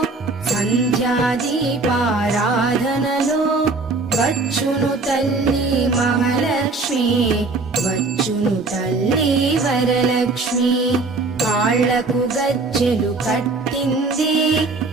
సంధ్యాదీపారాధనలో వచ్చును తల్లి మహాలక్ష్మి, వచ్చును తల్లి వరలక్ష్మి. కాళ్లకు గజ్జెలు కట్టింది,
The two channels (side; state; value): left; quieter; 3.6 dB